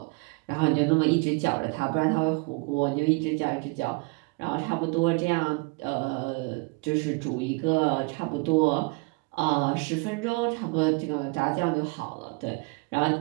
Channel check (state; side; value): quieter; left; 29.0 dB